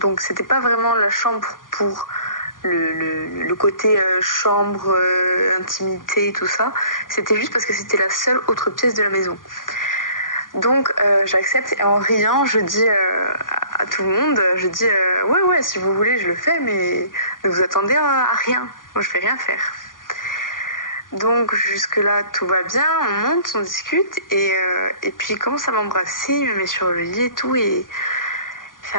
c'était pas vraiment la chambre pour le côté chambre, intimité et tout ça. C'était juste parce que c'était la seule autre pièce de la maison. Donc j'accepte et en riant, je dis à tout le monde, ouais, si vous voulez, je le fais, mais ne vous attendez à rien. Moi, je vais rien faire. Donc jusque-là, tout va bien, on monte, on discute et puis il commence à m'embrasser, il me met sur le lit et tout et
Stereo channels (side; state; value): right; late; 0.90 ms